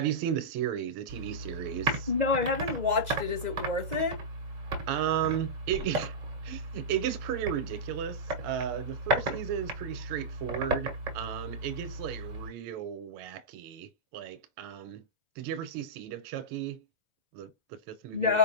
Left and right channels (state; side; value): late; left; 2.0 ms